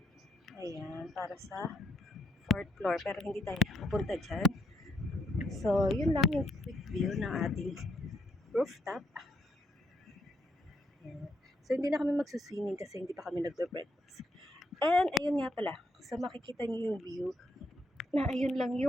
Ayan, para sa 4th floor. Pero hindi tayo pupunta dyan. So, yun lang yung quick view ng ating rooftop. Ayan. So, hindi na kami magsuswimming kasi hindi pa kami nagbe-breakfast. And, ayun nga pala. So, makikita niyo yung view na ayun lang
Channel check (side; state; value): both; normal; correlation 0.75